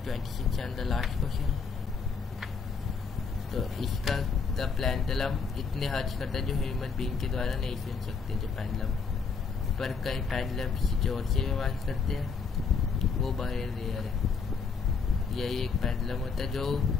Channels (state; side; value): quieter; right; 5.3 dB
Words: 26 एंड द लास्ट क्वेश्चन। तो इसका द पेंडुलम इतने हर्ट्ज करता है जो ह्यूमन बीइंग के द्वारा नहीं सुन सकते। जो पेंडुलम पर कई पेंडुलम किसी जोर से भी आवाज करते हैं, वो बहुत रेयर है। यही एक पेंडुलम होता है जो